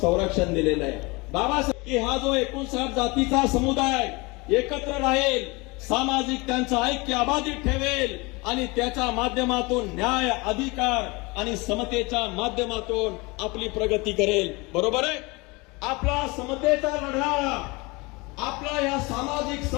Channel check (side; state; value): right; quieter; 25.5 dB